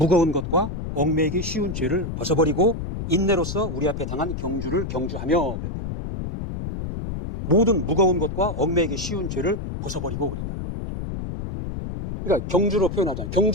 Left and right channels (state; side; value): noise; left; rumble, 6 dB below the sound